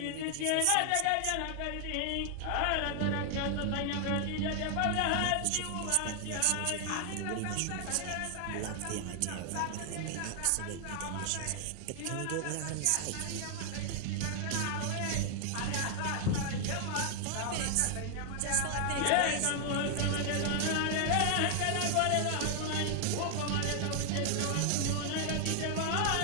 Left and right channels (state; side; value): different; both; correlation 0.00